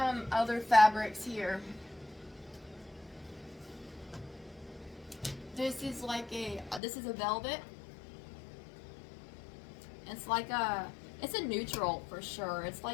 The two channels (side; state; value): right; drops out; at 6.8 s